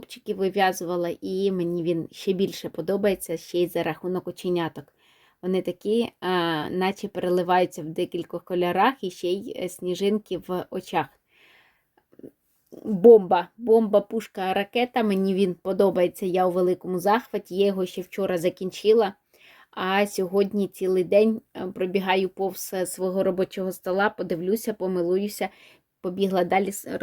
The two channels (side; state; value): both; identical; correlation 1.00